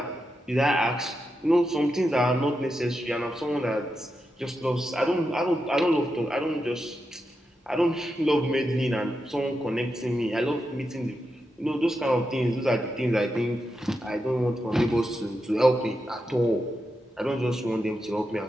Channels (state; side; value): normal; both; correlation 0.87